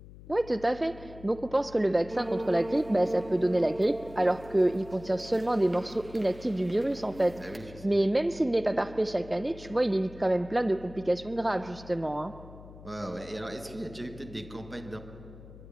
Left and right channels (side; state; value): left; noise; hum, 18 dB below the sound